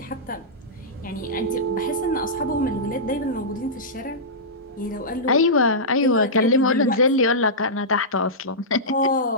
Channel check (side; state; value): both; normal; correlation -0.14